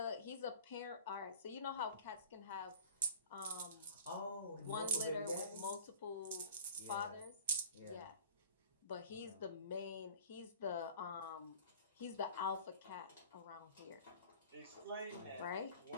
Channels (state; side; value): inverted; both; correlation -0.44